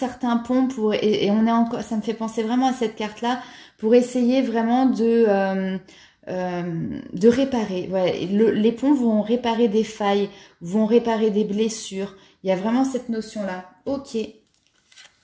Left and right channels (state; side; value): identical; both; correlation 1.00